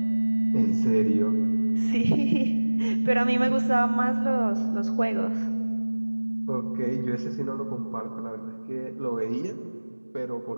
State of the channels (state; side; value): inverted; both; correlation -1.00